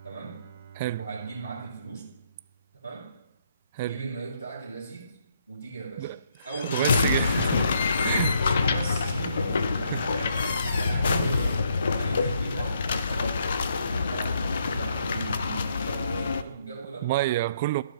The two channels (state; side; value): inverted; both; correlation -0.71